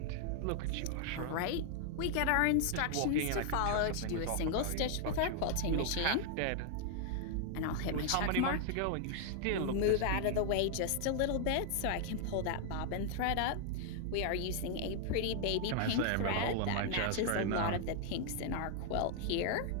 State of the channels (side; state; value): both; different; correlation 0.00